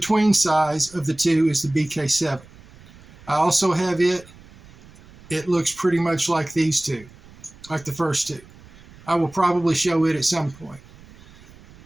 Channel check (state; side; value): noise; right; rumble, 23 dB below the sound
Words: size of the 2 is the BK7. I also have it. It looks pretty much like these 2, like the first 2. I will probably show it at some point.